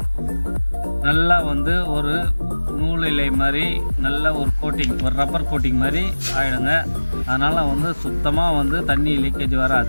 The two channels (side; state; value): both; inverted; correlation -1.00